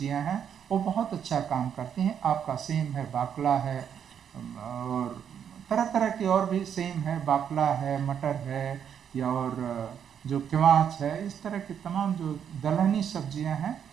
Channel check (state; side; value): quieter; left; 8.3 dB